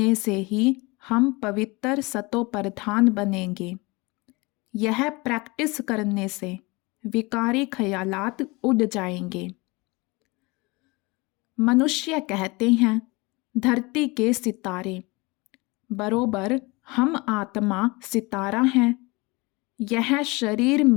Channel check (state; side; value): quieter; right; 25.0 dB